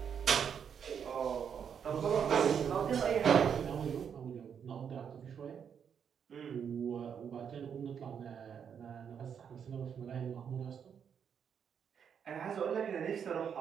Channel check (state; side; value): quieter; left; 7.6 dB